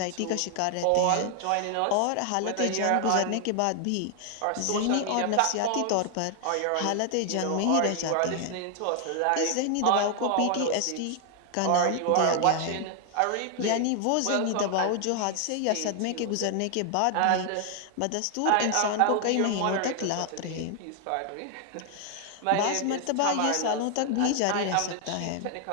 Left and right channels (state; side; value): different; both; correlation 0.00